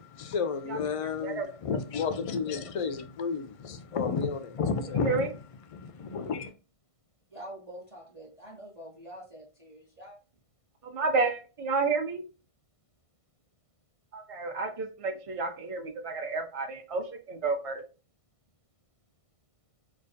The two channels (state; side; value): late; right; 1.5 ms